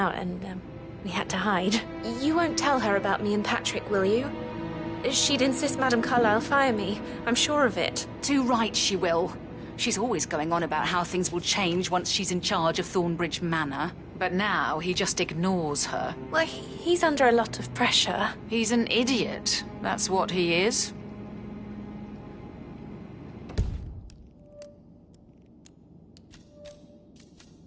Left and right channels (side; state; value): both; identical; correlation 1.00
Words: and we had to hide. You won't tell her about me and Patrick, will you? She'd insist Madame Carlyle fire me. I'm sure of it. Too right she will. She's always going on about how things will change once she's in charge of Thornbridge Manor. But now he just ignores her. Well, he's under a lot of pressure. He's an idiot. That's what he is.